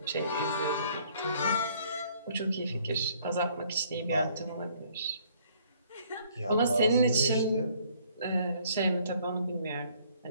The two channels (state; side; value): inverted; both; correlation -0.61